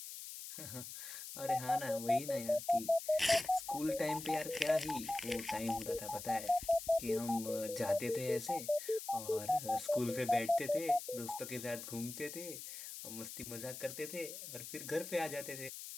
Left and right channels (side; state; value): left; noise; hiss, 10 dB below the sound